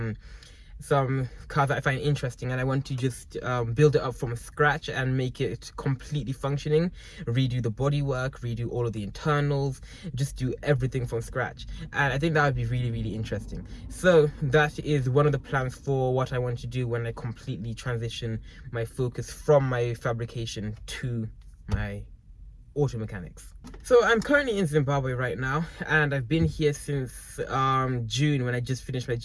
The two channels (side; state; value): both; identical; correlation 1.00